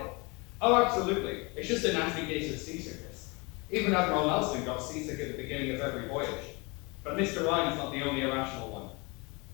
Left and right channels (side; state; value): right; quieter; 27.9 dB